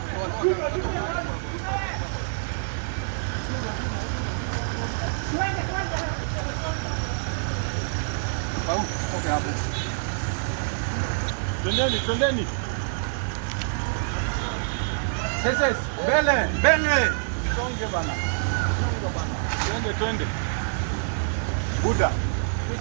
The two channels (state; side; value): silent; left; digital silence